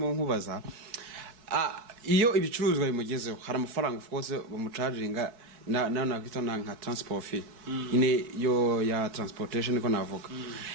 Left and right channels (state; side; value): late; left; 4.6 ms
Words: nkubaza iyo ibicuruzwa bimugezeho hari amafaranga of course bamucharginga na kwita nka transport fee ine yo ya transportation niko navuga